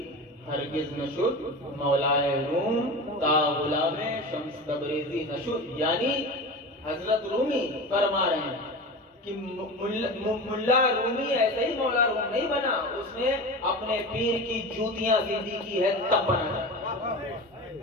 हरगिज नशुद मौलाए रूम, ता गुलामे शम्स तबरेज़ी नशुद। यानी हजरत रूमी फरमा रहे हैं कि मुल्ला रूमी ऐसे ही मौला रूम नहीं बना, उसने अपने पीर की जूतियां सीधी की है तब बना।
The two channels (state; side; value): normal; both; correlation 0.29